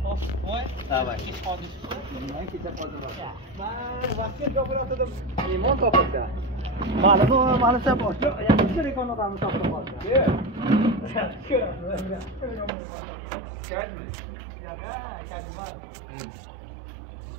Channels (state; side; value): drops out; left; at 12.7 s